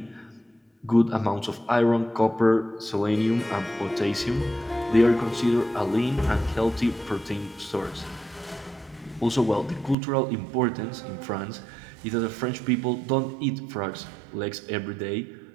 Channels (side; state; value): left; drops out; at 10.0 s